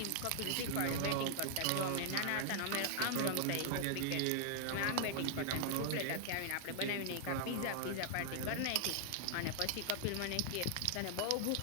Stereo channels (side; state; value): both; different; correlation 0.00